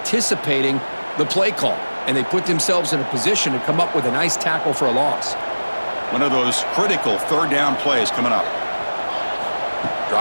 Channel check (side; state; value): both; inverted; correlation -1.00